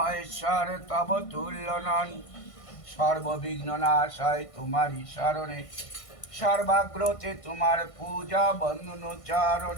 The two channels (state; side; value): late; right; 1.5 ms